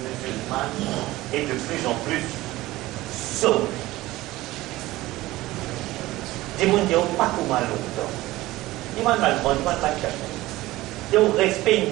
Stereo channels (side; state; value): left; quieter; 17.8 dB